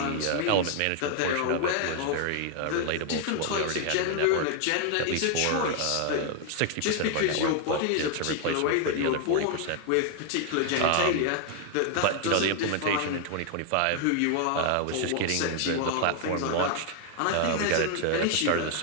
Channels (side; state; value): both; different; correlation 0.00